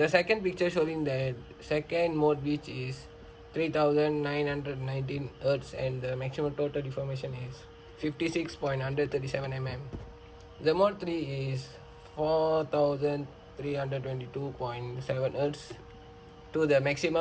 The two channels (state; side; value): identical; both; correlation 1.00